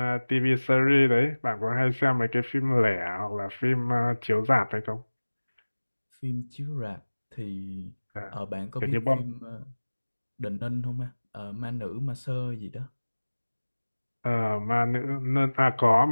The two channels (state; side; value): inverted; both; correlation -1.00